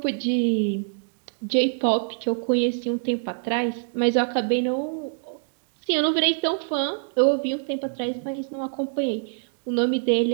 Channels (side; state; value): left; silent; digital silence